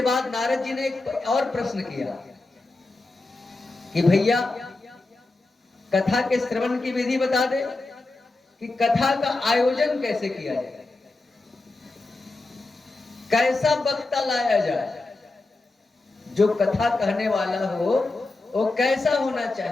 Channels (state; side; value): quieter; right; 3.2 dB